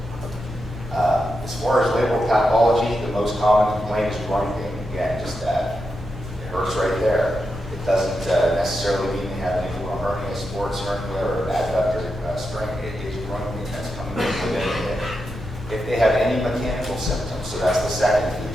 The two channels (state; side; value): normal; both; correlation 0.87